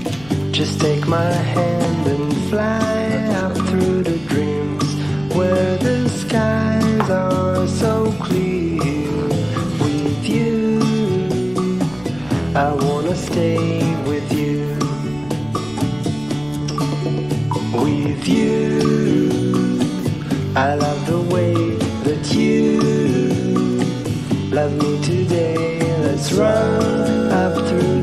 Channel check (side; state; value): left; noise; rumble, 21 dB below the sound